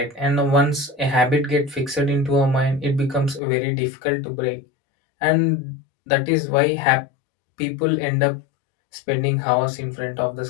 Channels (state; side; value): drops out; right; at 3.4 s